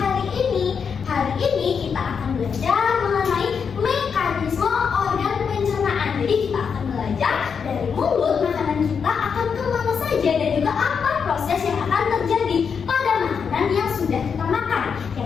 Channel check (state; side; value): quieter; right; 6.4 dB